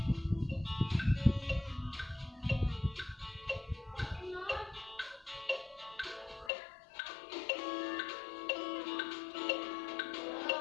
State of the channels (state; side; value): drops out; right; at 6.5 s